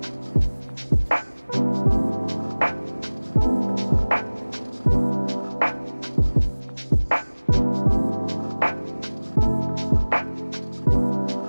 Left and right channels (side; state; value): both; inverted; correlation -1.00